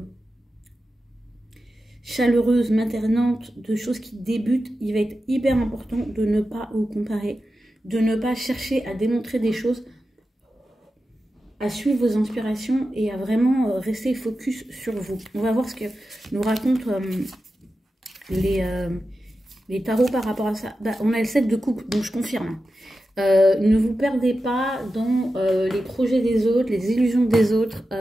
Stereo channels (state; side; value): normal; both; correlation 0.92